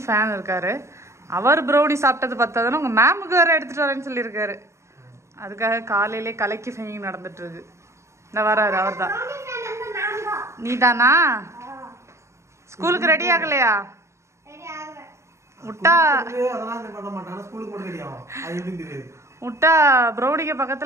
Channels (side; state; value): left; late; 0.14 ms